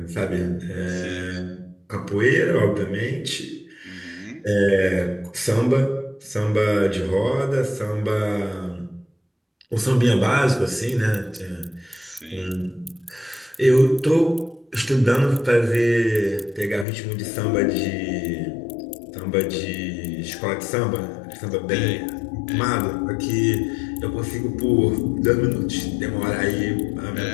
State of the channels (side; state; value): right; drops out; at 16.9 s